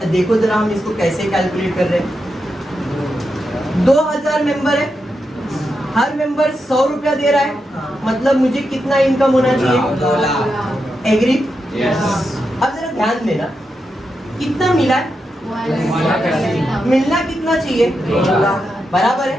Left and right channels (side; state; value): both; normal; correlation 0.86